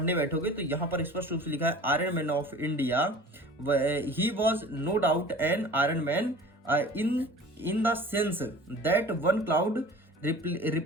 बैठोगे तो यहाँ पर स्पष्ट रूप से लिखा है iron man of India, he was no doubt an iron man in the sense that one cloud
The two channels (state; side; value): normal; both; correlation 0.42